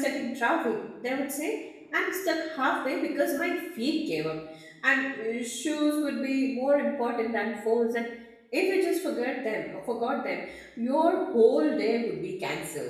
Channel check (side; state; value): both; identical; correlation 1.00